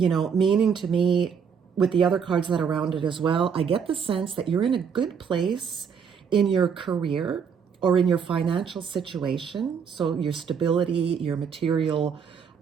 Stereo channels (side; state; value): left; quieter; 6.8 dB